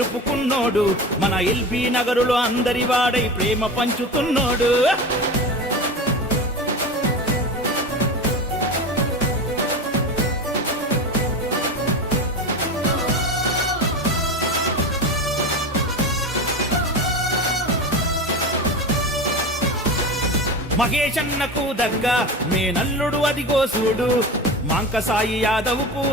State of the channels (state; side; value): normal; both; correlation 0.27